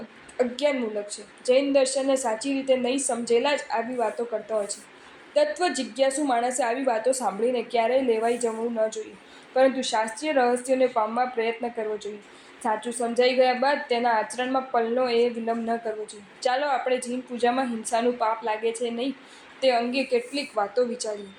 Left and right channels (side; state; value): both; identical; correlation 1.00